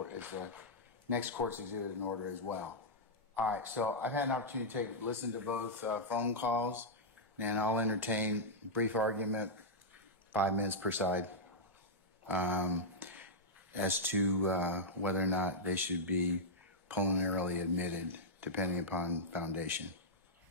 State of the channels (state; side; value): normal; both; correlation -0.07